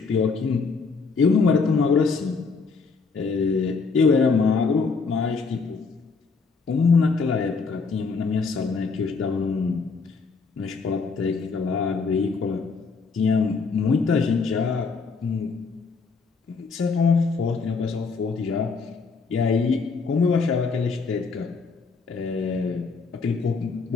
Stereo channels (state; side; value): quieter; right; 4.7 dB